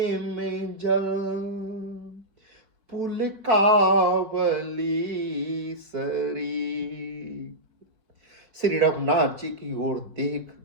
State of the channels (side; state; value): left; late; 4.5 ms